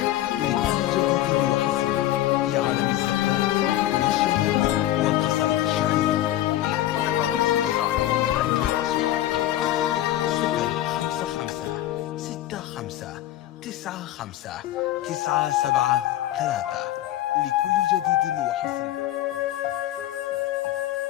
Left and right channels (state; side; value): quieter; right; 14.0 dB